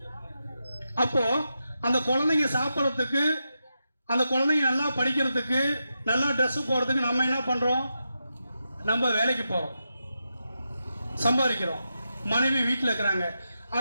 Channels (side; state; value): both; inverted; correlation -0.87